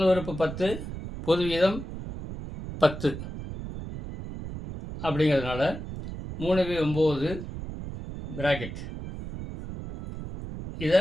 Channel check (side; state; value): right; noise; rumble, 9 dB below the sound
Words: உறுப்பு 10, பொது வீதம் 10 அப்படிங்கிறதுனால 3/9 பிராக்கெட் இதை